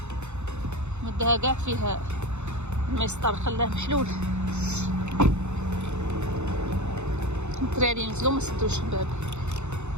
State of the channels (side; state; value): left; late; 0.82 ms